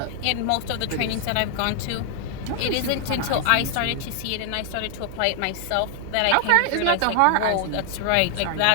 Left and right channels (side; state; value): both; different; correlation 0.00